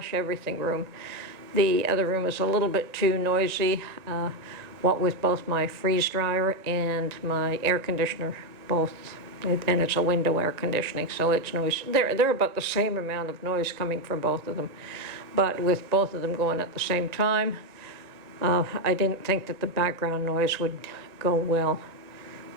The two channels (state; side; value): late; left; 1.9 ms